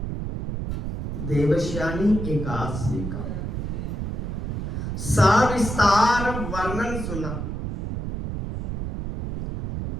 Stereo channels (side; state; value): right; noise; rumble, 4 dB below the sound